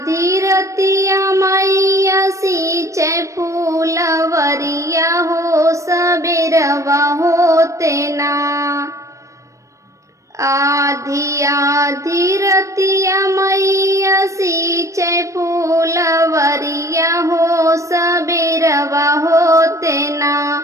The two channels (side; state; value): left; late; 0.15 ms